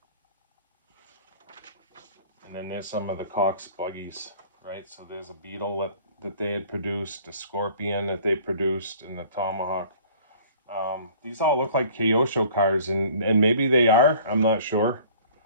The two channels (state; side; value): inverted; both; correlation -0.50